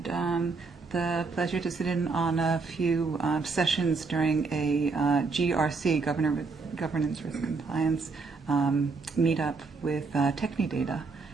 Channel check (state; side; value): quieter; left; 4.3 dB